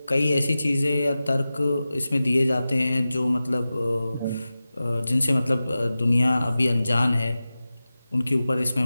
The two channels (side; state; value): both; inverted; correlation -0.95